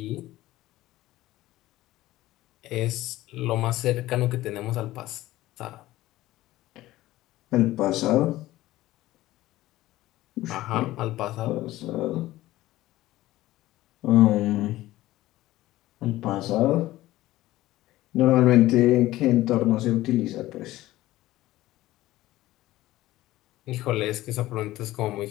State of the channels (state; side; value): quieter; right; 16.4 dB